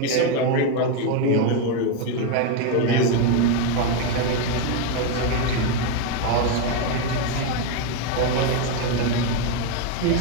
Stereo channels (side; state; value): both; different; correlation 0.02